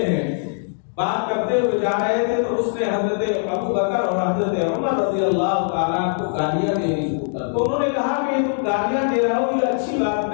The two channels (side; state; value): right; silent; digital silence